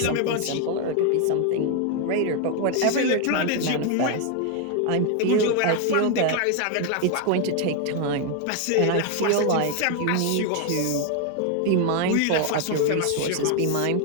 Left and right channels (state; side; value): different; both; correlation 0.01